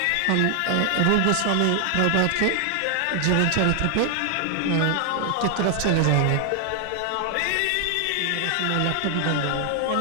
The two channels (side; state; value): both; different; correlation 0.00